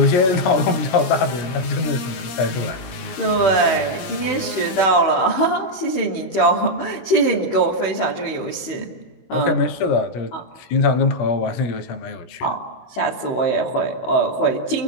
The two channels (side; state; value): right; late; 17 ms